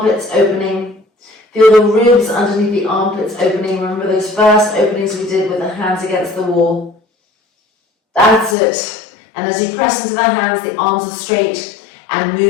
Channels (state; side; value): drops out; right; at 8.6 s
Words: opening. Feel the ribs underneath the armpits opening. Remember those first openings we did with the hands against the wall? That's it. And as you press into the hands, the arms are straight, and